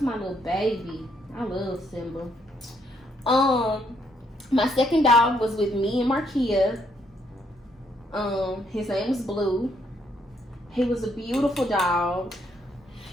my little baby. I love Simba. My second dog was with me and Markia. His name was Blue. He was a beautiful dog.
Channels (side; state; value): both; normal; correlation 0.72